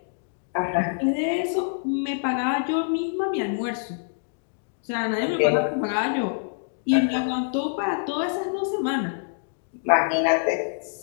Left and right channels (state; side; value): silent; right; digital silence